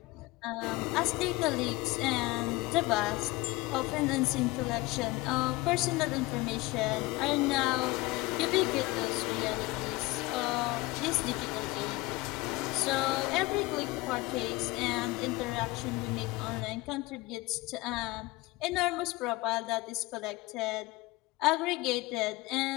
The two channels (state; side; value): quieter; right; 21.3 dB